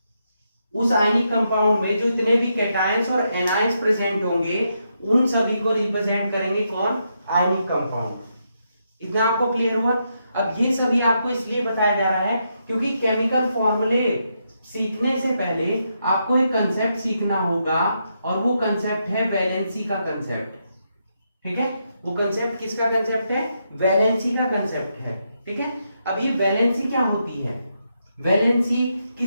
उस आयनिक कंपाउंड में जो इतने भी कैटायंस और एनायंस प्रेजेंट होंगे उन सभी को रिप्रेजेंट करेंगे कौन? Ionic compound. इतना आपको क्लियर हुआ? अब ये सभी आपको इसलिए बताया जा रहा है क्योंकि केमिकल फॉर्मूले सीखने से पहले आपको एक कंसेप्ट सीखना होगा और वो कंसेप्ट है वैलेंसी का कंसेप्ट. ठीक है, वो कंसेप्ट किसका कंसेप्ट है? वैलेंसी का कंसेप्ट है. ठीक है, अब ये वैलेंसी क्या होती है? वैलेंसी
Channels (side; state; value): both; inverted; correlation -0.81